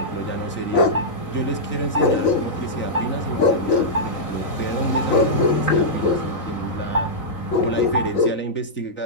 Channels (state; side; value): late; right; 3.9 ms